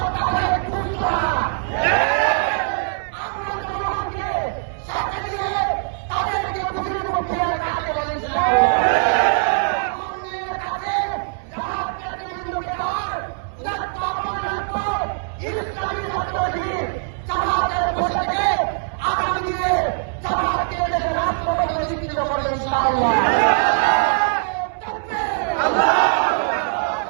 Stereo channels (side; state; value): left; silent; 64 dB below the other